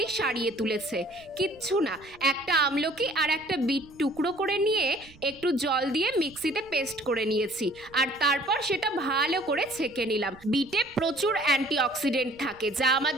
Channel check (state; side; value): noise; right; rumble, 26 dB below the sound